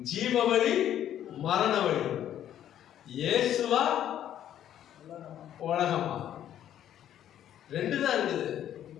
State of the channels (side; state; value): right; quieter; 11.0 dB